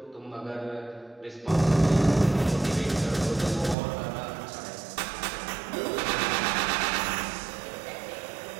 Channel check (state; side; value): drops out; left; at 3.8 s